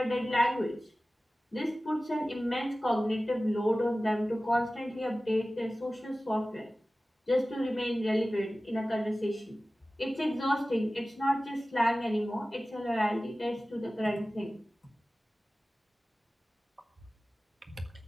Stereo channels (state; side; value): normal; both; correlation 0.96